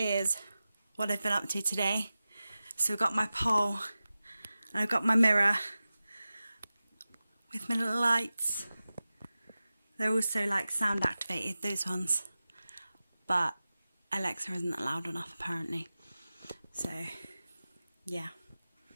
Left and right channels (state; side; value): inverted; both; correlation -0.95